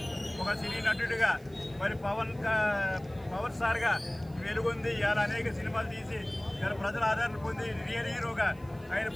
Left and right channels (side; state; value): right; noise; hiss, 28 dB below the sound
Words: ఒక సినీ నటుడిగా, మరి పవర్ స్టార్గా వెలుగొంది. ఇవాళ అనేక సినిమాలు తీసి ఇలా ప్రజల ఆదరణ పొంది రియల్ హీరోగా ఆయన